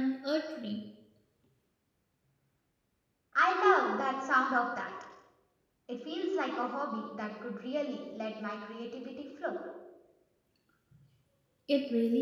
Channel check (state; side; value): identical; both; correlation 1.00